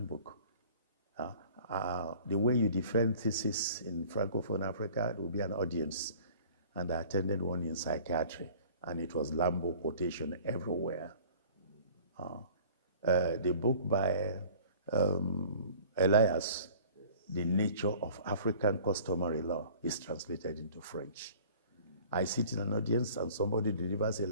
The way you defend thesis in Francophone Africa, there will be an audience. And I attended one in psychiatry, and it was Lambo quotation everywhere. The book by Elias, The Nature of African Customary Law, is translated into French. I sit in an audience and somebody delivers a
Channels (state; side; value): inverted; both; correlation -0.47